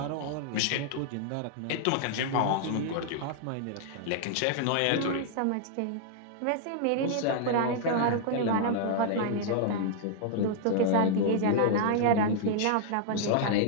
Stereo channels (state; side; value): different; both; correlation -0.01